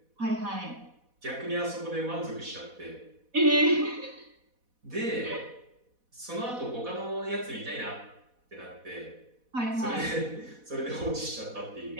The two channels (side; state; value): left; late; 4.1 ms